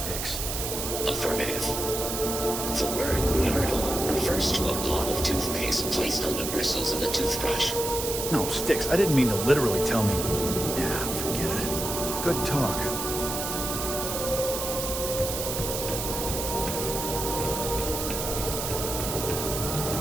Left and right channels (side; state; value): right; noise; hiss, 4 dB below the sound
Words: Affirmative. The word myrtle refers to a blob of toothpaste placed on the bristles of a toothbrush. No, Styx, I didn't mean to literally tell me. Yeah, forget it. Good talk.